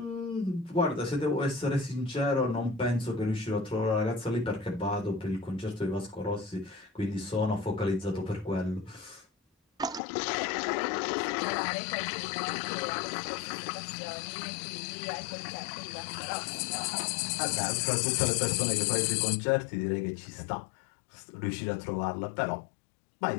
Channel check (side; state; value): right; drops out; at 10.0 s